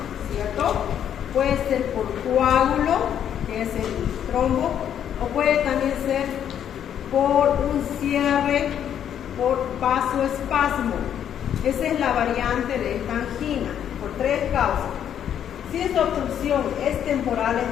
¿cierto? Puede ser por coágulo, que es el trombo, o puede también ser por un cierre por vasoespasmo. Esa es la variante de esta angina, por tres causas. Si esta obstrucción es temporal,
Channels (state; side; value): quieter; right; 9.5 dB